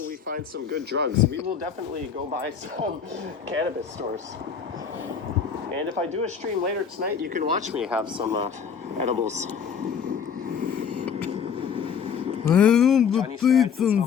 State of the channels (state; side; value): quieter; right; 6.9 dB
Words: we find some good drugs? We will definitely go buy some cannabis stores. And if I do a stream later tonight, you can watch me have some edibles. Johnny Strides is